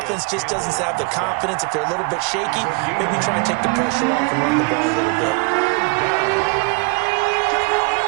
just doesn't have the confidence, if they're a little bit shaky, maybe try and take the pressure off and run the ball a little bit.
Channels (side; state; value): left; quieter; 31.5 dB